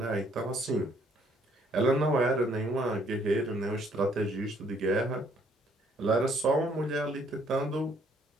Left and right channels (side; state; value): both; normal; correlation 0.65